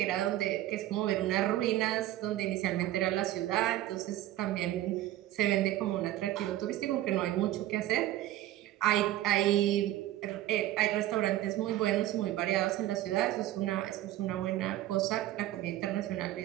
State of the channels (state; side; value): quieter; left; 14.5 dB